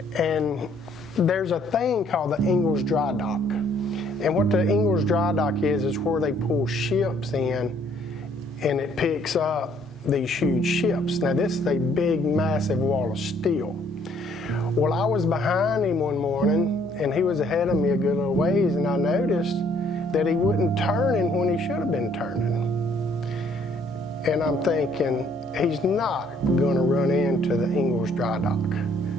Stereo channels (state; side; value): normal; both; correlation 0.64